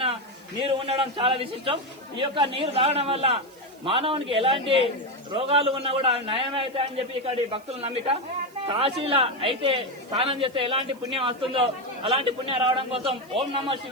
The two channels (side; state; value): right; noise; hiss, 27 dB below the sound